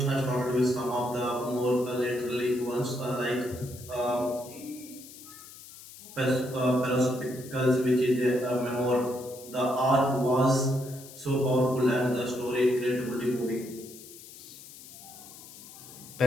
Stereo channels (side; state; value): left; noise; hiss, 17 dB below the sound